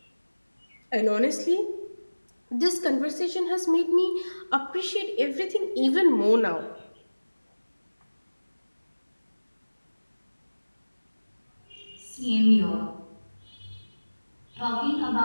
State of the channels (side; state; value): both; inverted; correlation -1.00